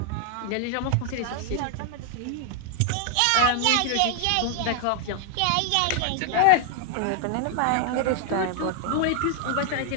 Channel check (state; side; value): different; both; correlation 0.00